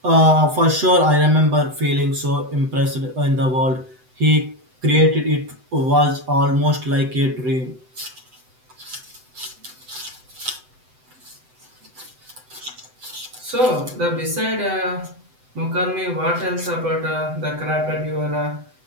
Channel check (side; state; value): left; late; 7.9 ms